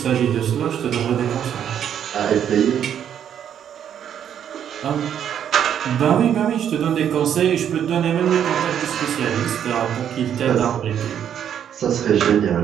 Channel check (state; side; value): quieter; left; 9.2 dB